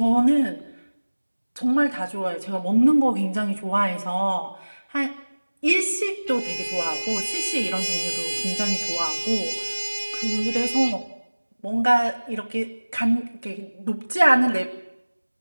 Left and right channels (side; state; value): both; inverted; correlation -1.00